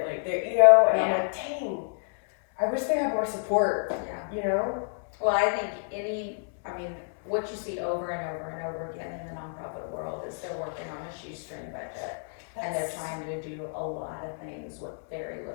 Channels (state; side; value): silent; right; digital silence